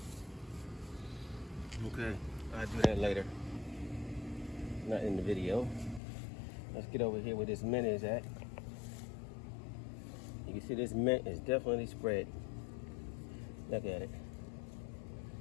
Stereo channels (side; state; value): right; drops out; at 6.0 s